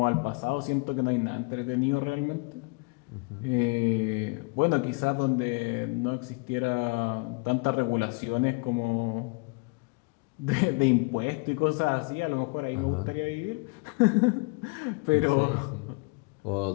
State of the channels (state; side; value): quieter; right; 30.3 dB